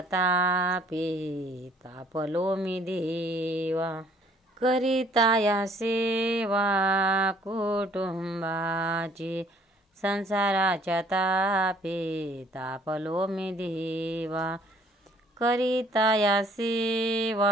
तापे तापलो मी देवा. करिता या सेवा कुटुंबाची. संसाराच्या तापे तापलो मी देवा. करिता या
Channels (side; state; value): both; normal; correlation 0.60